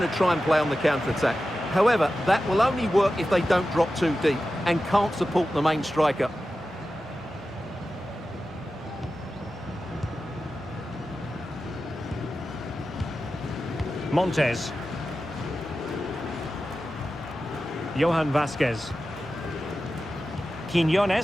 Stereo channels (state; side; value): normal; both; correlation 0.93